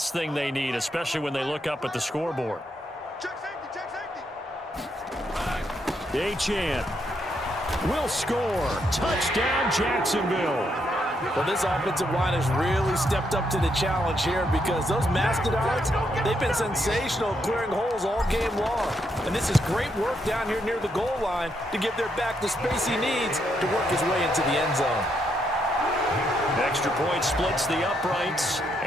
thing they need, especially when they look up at the scoreboard. Achane. will score. Touchdown, Jacksonville. Well, this offensive line has really stepped up to the challenge here because those Mastodons, they've been sensational clearing holes all game long. And this is great work down here near the goal line to give their back the space he needs to work his way into the end zone. Extra point splits the uprights,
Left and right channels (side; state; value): both; normal; correlation 0.78